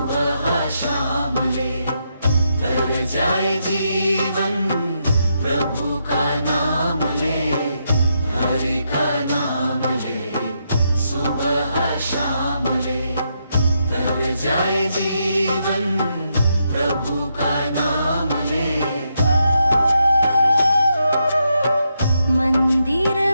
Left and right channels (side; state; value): both; inverted; correlation -0.81